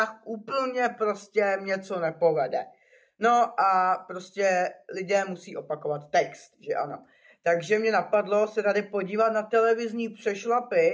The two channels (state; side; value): identical; both; correlation 1.00